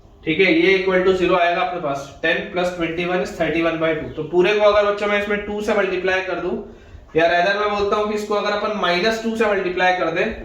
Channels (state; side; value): identical; both; correlation 1.00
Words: ठीक है, ये इक्वल टू 0 आएगा अपने पास। 10 plus 21 is 31/2। तो पूरे को अगर बच्चों मैं इसमें 2 से मल्टीप्लाई कर दूं, या रादर मैं बोलता हूं कि इसको अगर अपन -2 से मल्टीप्लाई कर दें